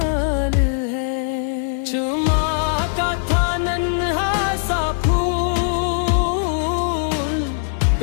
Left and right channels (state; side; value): silent; right; 66 dB below the other